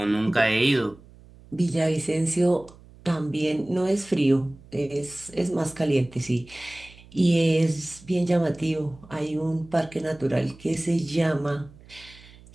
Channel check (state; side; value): noise; right; hum, 23 dB below the sound